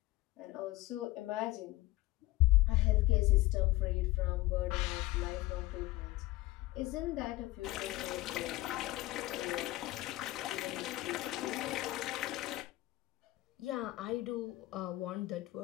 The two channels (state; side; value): quieter; right; 18.5 dB